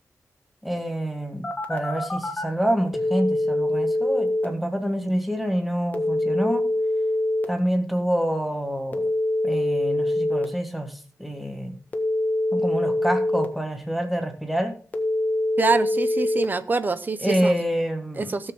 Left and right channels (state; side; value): normal; both; correlation 0.91